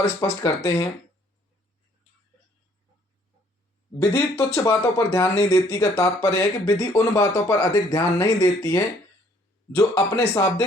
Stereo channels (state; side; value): normal; both; correlation 0.62